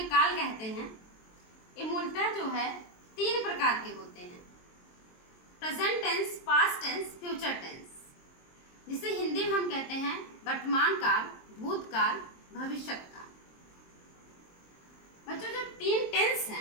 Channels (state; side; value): late; right; 23 ms